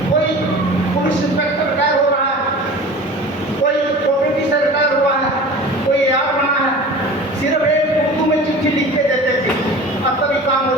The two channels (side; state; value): both; normal; correlation 0.39